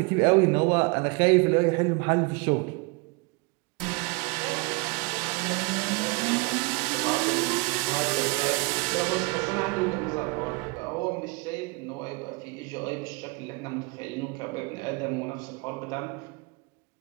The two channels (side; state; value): left; quieter; 28.4 dB